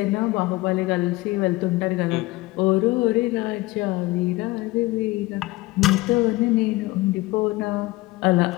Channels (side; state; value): right; quieter; 20.3 dB